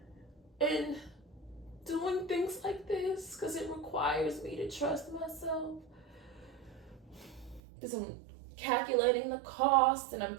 and doing things like this, because it requires me to trust myself, because I'm calculating the cost and I'm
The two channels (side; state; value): left; drops out; at 7.6 s